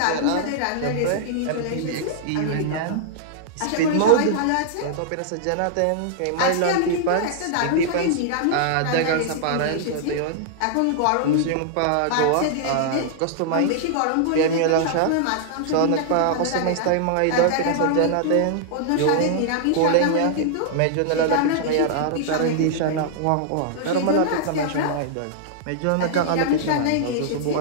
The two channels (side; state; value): both; different; correlation -0.01